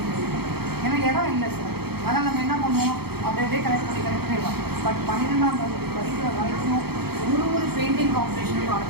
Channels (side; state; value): left; late; 0.96 ms